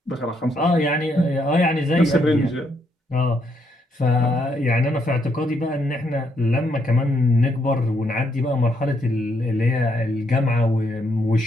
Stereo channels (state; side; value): normal; both; correlation 0.75